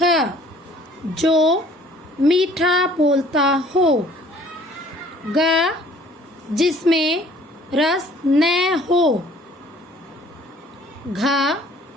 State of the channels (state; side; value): normal; both; correlation 0.55